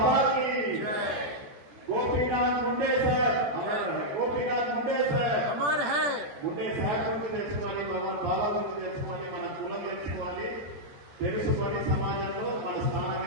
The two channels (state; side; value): late; left; 14 ms